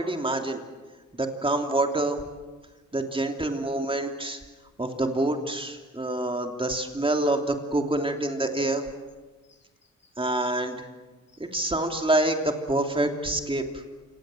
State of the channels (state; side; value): normal; both; correlation 0.49